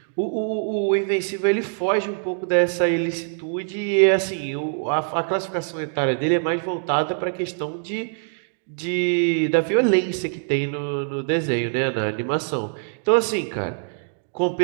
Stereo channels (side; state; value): left; silent; digital silence